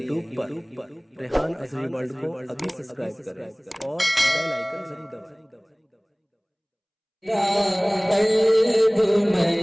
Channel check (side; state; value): both; identical; correlation 1.00